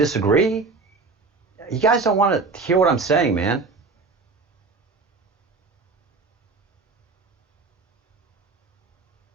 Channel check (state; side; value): quieter; left; 4.2 dB